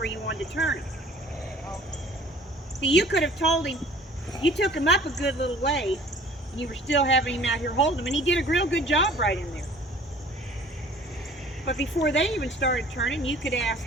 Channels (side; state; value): both; normal; correlation 0.50